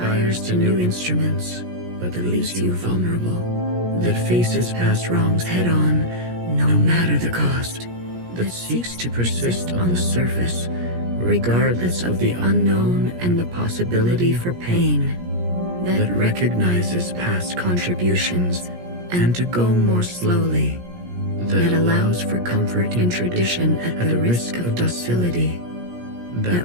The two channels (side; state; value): left; late; 17 ms